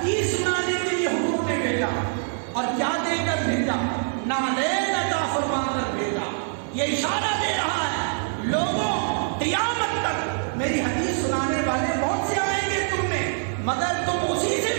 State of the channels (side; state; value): left; silent; digital silence